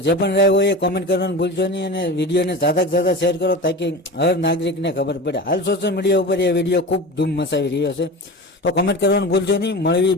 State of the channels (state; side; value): normal; both; correlation 0.31